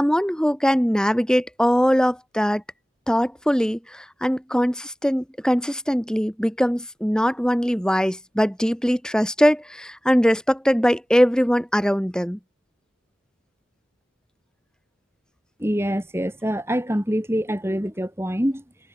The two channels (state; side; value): normal; both; correlation 0.97